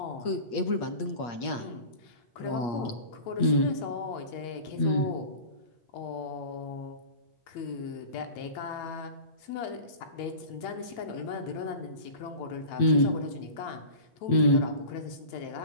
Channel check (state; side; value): late; right; 8.8 ms